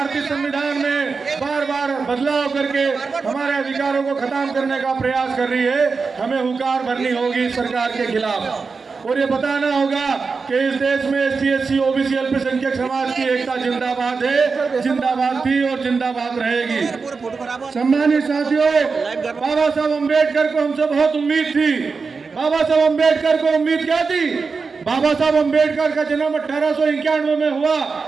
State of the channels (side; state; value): left; quieter; 4.7 dB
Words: संविधान में बार बार बदलाव करके हमारे अधिकारों को खत्म करने का प्रयास कर रही है। हमें हुंकार भरनी होगी सरकार के खिलाफ और ये बताना होगा कि इस देश में एससी, एससी, ओबीसी, अल्पसंख्यक समाज की एकता जिंदाबाद है, जिंदाबाद थी और जिंदाबाद रहेगी। सम्मानित साथियों, बाबा साहब अम्बेडकर को हमसे बहुत उम्मीद थी। बाबा साहब अम्बेडकर को उम्मीद क्या थी? बाबा साहब अम्बेडकर का जन्म 1891 में हुआ,